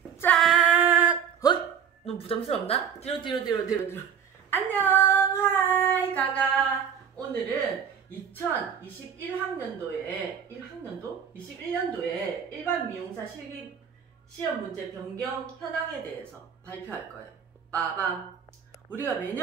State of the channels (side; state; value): left; quieter; 7.9 dB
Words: 짠! 헐! 너무 부담스럽나? 뒤로. 안녕! 하이! 가가! 오늘은 2021학년도에 21년도에 일반 미용사 실기 시험 문제 변경 현황에 대해서 발표할 거예요. 빠밤! 우리가